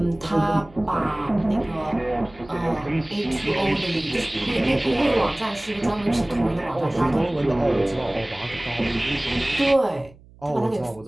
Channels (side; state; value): right; noise; hum, 24 dB below the sound